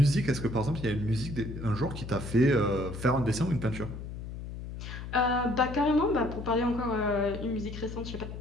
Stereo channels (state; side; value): noise; left; hum, 9 dB below the sound